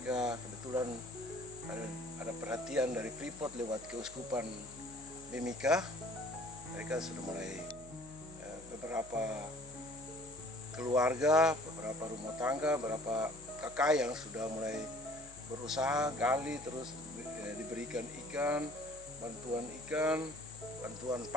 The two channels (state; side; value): noise; left; hum, 20 dB below the sound